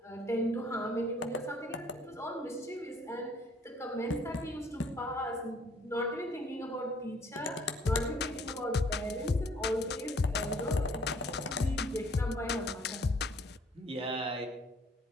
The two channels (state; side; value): normal; both; correlation 0.60